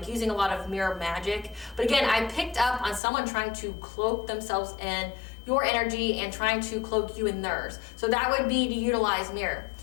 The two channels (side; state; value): right; drops out; at 3.0 s